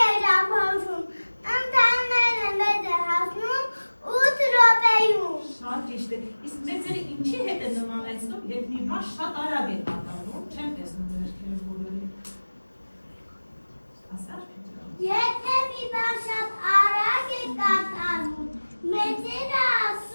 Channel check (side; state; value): both; inverted; correlation -1.00